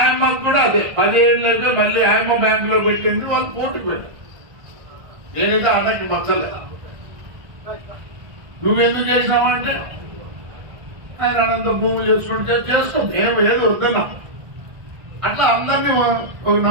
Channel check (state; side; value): late; left; 1.5 ms